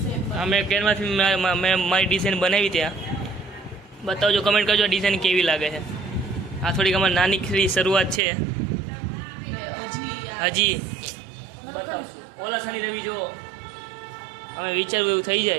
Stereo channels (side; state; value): left; drops out; at 8.2 s